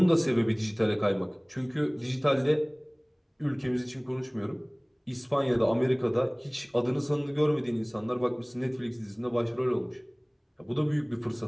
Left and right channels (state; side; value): identical; both; correlation 1.00